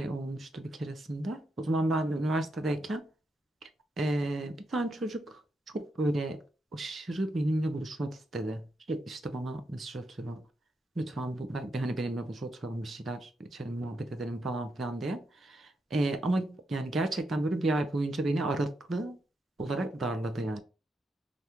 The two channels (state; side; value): normal; both; correlation 0.83